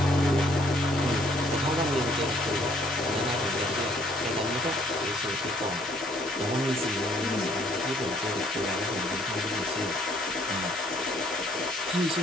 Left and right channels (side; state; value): both; normal; correlation 0.64